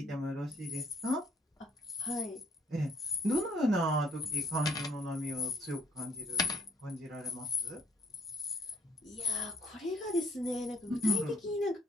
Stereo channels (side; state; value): both; normal; correlation 0.65